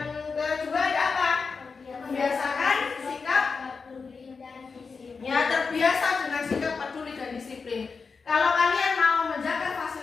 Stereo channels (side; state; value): right; quieter; 4.9 dB